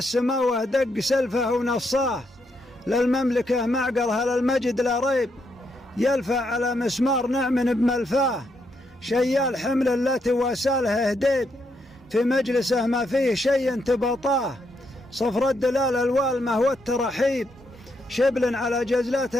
دق سلفه ونصاه، للمملكه معقرها للمجد لا ريب، يلفع على مسمار نعم بملفاه، شيال حمل التي واساله هديب، في مجلسه ما فيه شيء تبطاه، صفر الدلال الوالمه والترحيب، شبل على جزلات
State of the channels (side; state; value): both; normal; correlation 0.78